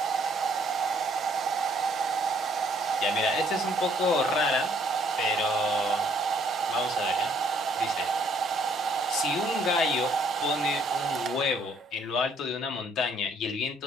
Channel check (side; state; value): both; normal; correlation 0.65